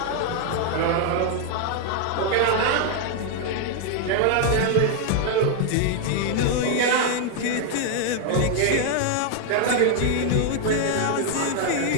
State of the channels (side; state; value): both; different; correlation 0.00